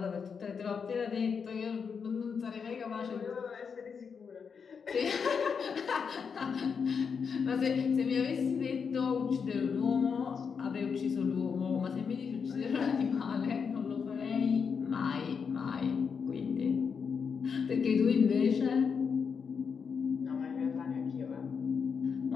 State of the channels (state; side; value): quieter; right; 6.1 dB